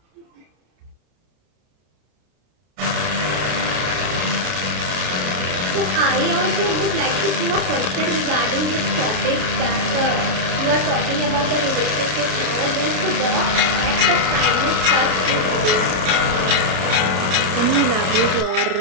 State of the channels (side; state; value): left; late; 32 ms